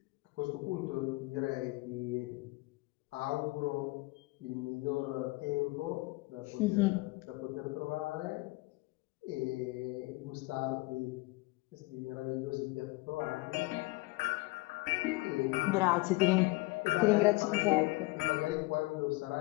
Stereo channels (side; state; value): right; quieter; 22.6 dB